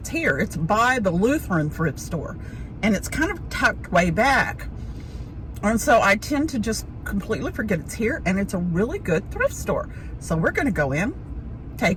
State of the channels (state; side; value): identical; both; correlation 1.00